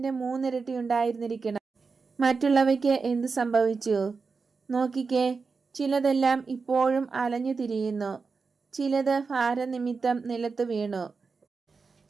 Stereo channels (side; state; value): left; quieter; 4.7 dB